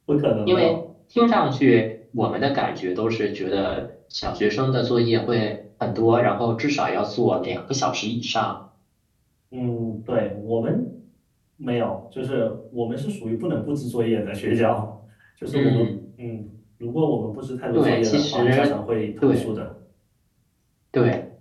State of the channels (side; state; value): both; identical; correlation 1.00